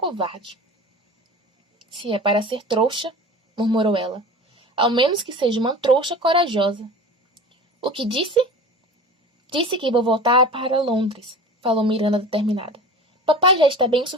Se é para ser trouxa, murmurou ela, ao menos que seja uma trouxa corajosa. O que disse? Disse que vou voltar para Londres, falou Miranda determinada. Papai já está bem o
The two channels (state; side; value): normal; both; correlation 0.36